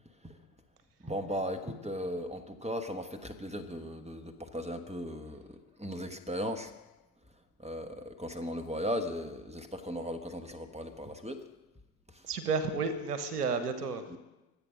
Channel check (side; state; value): both; normal; correlation 0.32